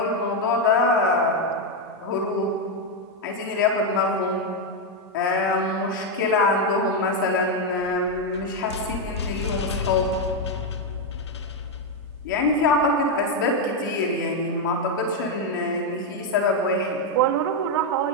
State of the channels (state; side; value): normal; both; correlation 0.03